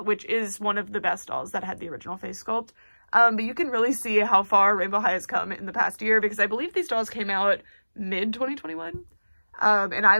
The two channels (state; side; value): inverted; both; correlation -1.00